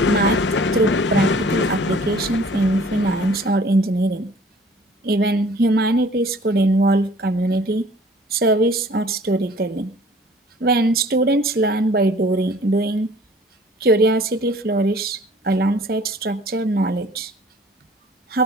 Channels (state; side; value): normal; both; correlation 0.52